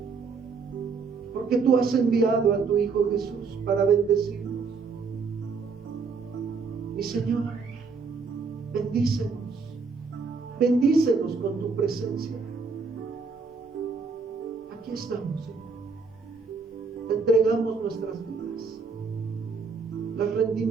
Porque tú has enviado a tu Hijo Jesús para bendecirnos. Mi Señor, bendícenos. Bendícenos con tu presencia. Aquí estamos, Señor. Te entregamos nuestras vidas. Las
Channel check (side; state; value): left; quieter; 4.8 dB